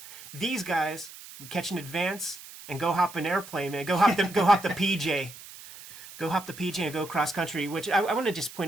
These guys would catch an advance and go hop an airplane, man. Go hop the PJ. Go hop the PJ and go cross country. Which I want to just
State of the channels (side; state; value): right; noise; hiss, 16 dB below the sound